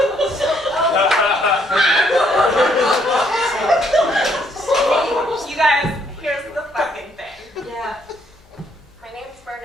You guys, here's the fucking thing. Yeah. My name's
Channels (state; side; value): noise; left; hum, 30 dB below the sound